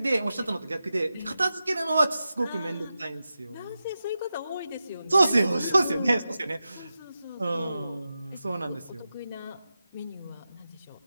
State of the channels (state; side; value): inverted; both; correlation -0.91